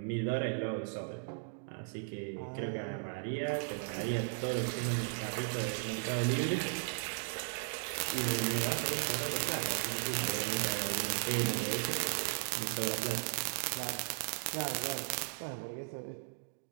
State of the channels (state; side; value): silent; left; digital silence